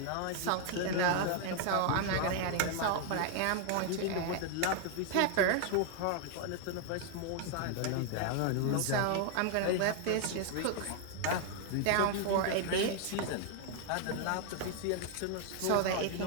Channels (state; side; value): different; both; correlation 0.00